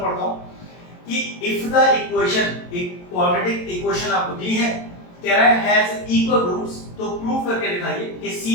पढ़ता हूं कि इफ द इक्वेशन, एक क्वाड्रेटिक इक्वेशन आपको दी है, कह रहा है हैज इक्वल रूट्स, तो प्रूव करके दिखाइए कि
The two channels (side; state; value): right; late; 22 ms